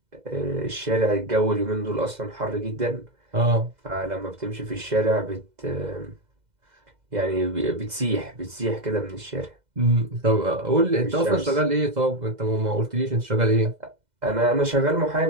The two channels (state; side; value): late; left; 2.0 ms